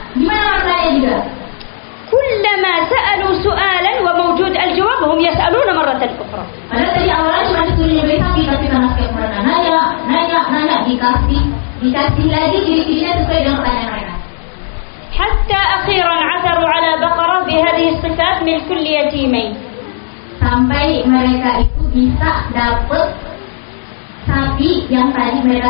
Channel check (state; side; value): silent; right; digital silence